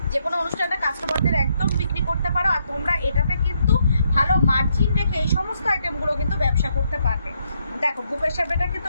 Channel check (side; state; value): both; inverted; correlation -0.75